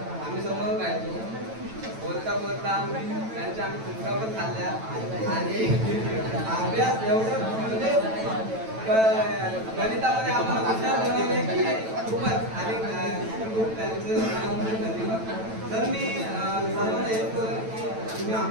आम्ही समोर राहायचो, बोलता बोलता त्यांच्या आम्ही चुका पण खाल्ल्या आणि अभ्यास एवढं म्हणजे गणितामध्ये आम्हाला हुशार बनवले की खूपच. आणि खूप त्यांचं धन्यवाद. तर मी सर्वांना हेच बोलेन की तुम्ही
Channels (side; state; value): left; late; 9.0 ms